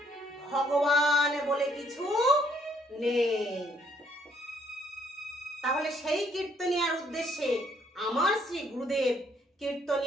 ভগবান বলে কিছু নেই। তাহলে সেই কীর্তনিয়ার উদ্দেশ্যে আমার শ্রী গুরুদেব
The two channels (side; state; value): both; normal; correlation 0.68